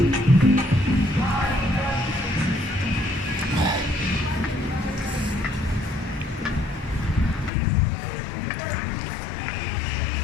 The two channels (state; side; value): drops out; right; at 7.5 s